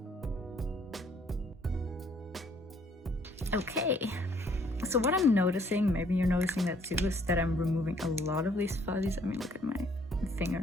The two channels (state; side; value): normal; both; correlation 0.63